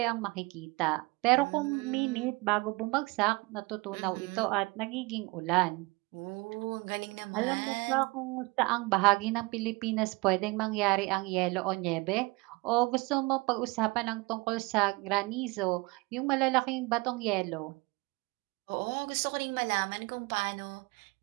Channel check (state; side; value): quieter; left; 24.8 dB